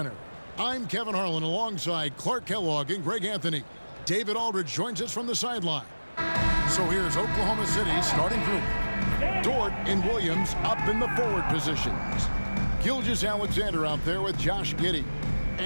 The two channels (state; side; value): inverted; both; correlation -1.00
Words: I'm Kevin Harlan alongside Clark Kellogg and Greg Anthony. David Aldridge joins us from the sideline. So here's Oklahoma City's starting group. Dort and Williams up in the forward positions. Gilgeous-Alexander out there with Josh Giddey.